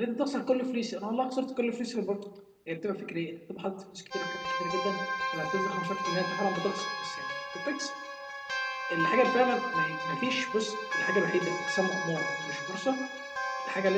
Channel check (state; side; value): identical; both; correlation 1.00